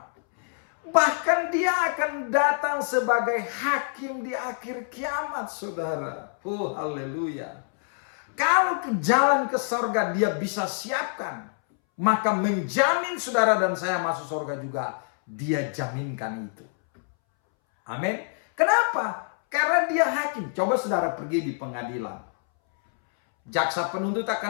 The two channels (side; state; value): right; silent; 61 dB below the other